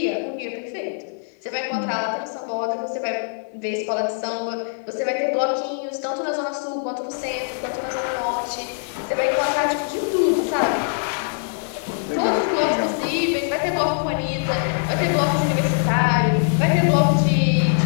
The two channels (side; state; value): right; silent; 64 dB below the other